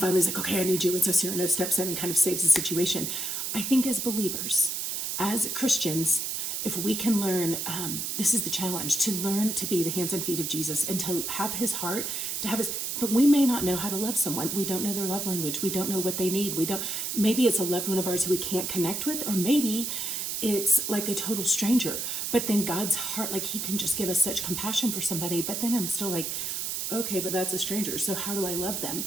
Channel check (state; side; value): noise; right; hiss, 2 dB below the sound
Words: finally he's like, okay, I need you. And so Cyrano steps in and kind of saves the situation. I think as believers, as Christians, if we can learn, this is the challenge, to learn to be the hands and feet of Jesus and to have his heart, but we may not know how to love someone. We don't know their love language. We don't know what they need. Maybe it's a loved one of ours who we can't connect with, or maybe it's like a total stranger. But then God's heart, like, he can just give us such compassion for somebody. But then I'm still like, okay, but that's a stranger. So how do I love them?